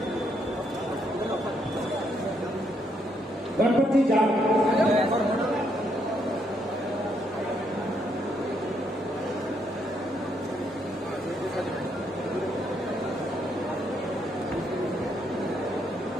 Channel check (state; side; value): normal; both; correlation 0.74